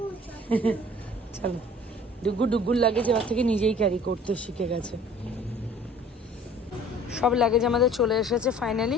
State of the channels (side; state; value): both; normal; correlation 0.49